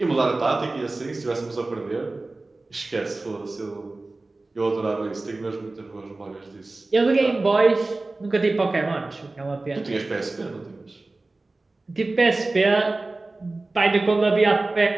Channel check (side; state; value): left; quieter; 3.2 dB